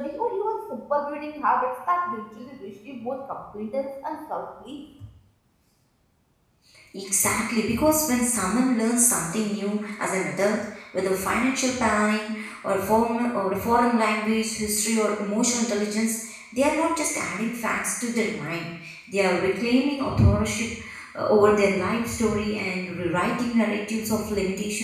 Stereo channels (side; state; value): both; identical; correlation 1.00